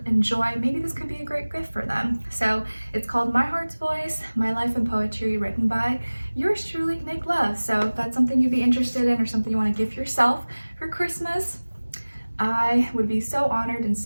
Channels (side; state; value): both; inverted; correlation -1.00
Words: enjoy, maybe this could be a great gift for them. So it's called My Heart's Voice, My Life in Poetry, written by yours truly, Nicloves. So if that's something you'd be interested in or something you want to gift yourself for Christmas, I would be so honored and